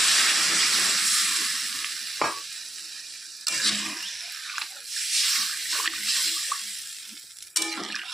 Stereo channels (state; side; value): normal; both; correlation 0.86